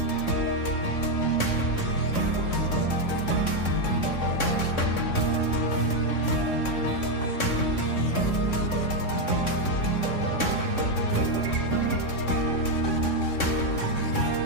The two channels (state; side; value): late; right; 3.6 ms